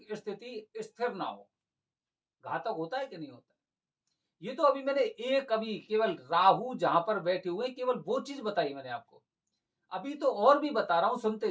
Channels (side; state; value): both; identical; correlation 1.00